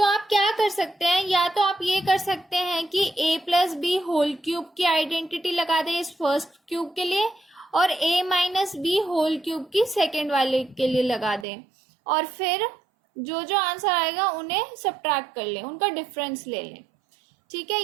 आप क्या कर सकते हैं, या तो आप ये कर सकते हैं कि a plus B whole cube की आइडेंटिटी लगा दें इस फर्स्ट क्यूब के लिए और a minus B whole cube की सेकेंड वाले के लिए लगा दें, और फिर जो जो आंसर आएगा उन्हें सब्ट्रैक्ट कर लें, उनका डिफरेंस ले लें। ठीक है,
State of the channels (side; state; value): left; drops out; at 11.5 s